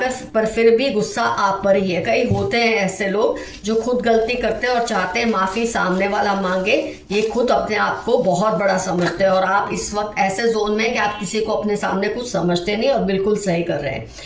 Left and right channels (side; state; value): both; identical; correlation 1.00